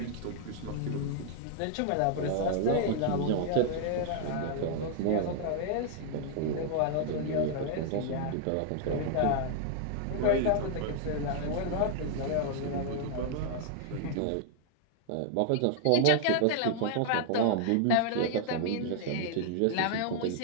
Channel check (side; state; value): both; different; correlation -0.01